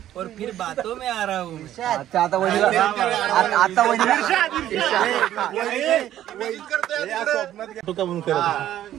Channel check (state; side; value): quieter; left; 12.3 dB